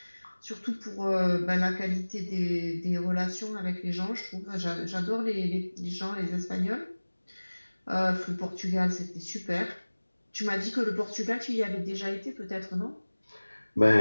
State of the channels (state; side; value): inverted; both; correlation -1.00